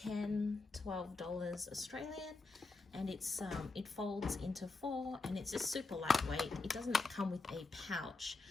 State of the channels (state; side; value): quieter; right; 3.7 dB